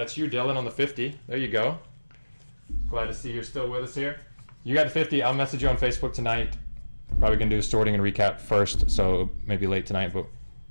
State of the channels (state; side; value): inverted; both; correlation -1.00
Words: you, Dylan, on the 50. There you go. Glad to see you're still with us here. You got the 50. I'll message you on Facebook tonight. Probably gonna do a sorting and recap first, so maybe late tonight, but